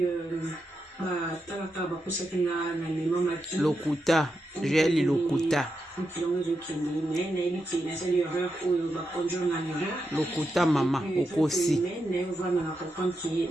lokuta jeli lokuta lokuta mama okosi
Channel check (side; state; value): both; normal; correlation 0.86